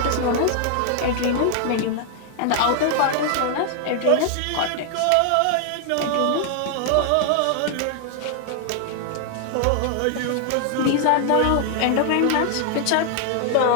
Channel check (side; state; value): both; different; correlation 0.00